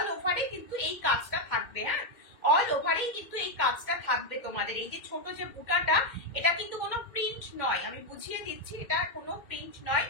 ওভারে কিন্তু এই কাজটা থাকবে, হ্যাঁ, অল ওভারেই কিন্তু এই কাজটা থাকবে তোমাদের। এই যে ছোট যে বুটাটা, এটা কিন্তু কোনো প্রিন্ট নয়, আমি বুঝিয়ে দিচ্ছি, এটা কোনো প্রিন্ট নয়,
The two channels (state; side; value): late; right; 2.1 ms